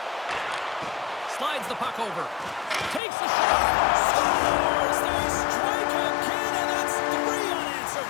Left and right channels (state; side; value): drops out; right; at 3.0 s